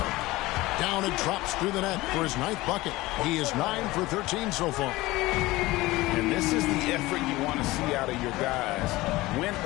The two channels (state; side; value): quieter; right; 19.3 dB